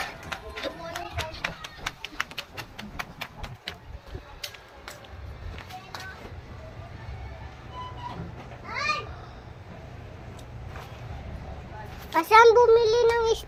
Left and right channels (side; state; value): both; identical; correlation 1.00